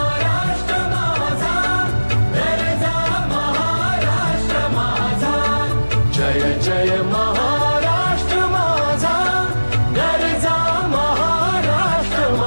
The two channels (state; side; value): inverted; both; correlation -1.00